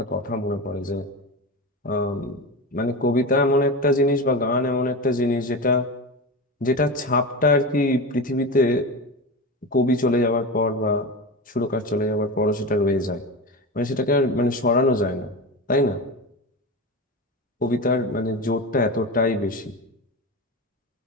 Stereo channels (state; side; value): normal; both; correlation 0.23